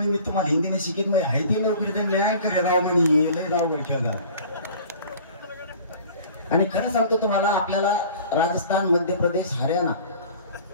मी तुम्हाला हिंदीने शिकित म्हणजे हायती नोकरी तर न्याय करे राव म्हणे लय राव ठेवला. आणि खरं सांगतो तुम्हाला, आपल्याला राजस्थान, मध्य प्रदेश, हरियाणा,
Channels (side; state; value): both; inverted; correlation -0.45